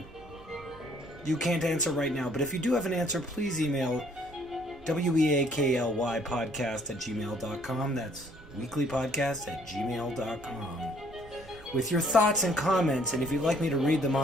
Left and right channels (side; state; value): right; noise; hum, 23 dB below the sound